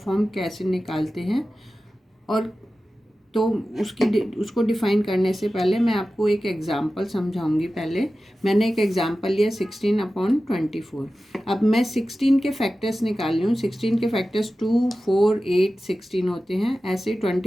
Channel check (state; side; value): normal; both; correlation 0.95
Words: कैसे निकालते हैं। और तो उसको डिफ़ाइन करने से पहले मैं आपको एक एग्ज़ाम्पल समझाऊंगी। पहले मैंने एक एग्ज़ाम्पल लिया 16/24। अब मैं 16 के फैक्टर्स निकाल रही हूँ। 16 के फैक्टर्स 2, 4, 8, 16 होते हैं। ऐसे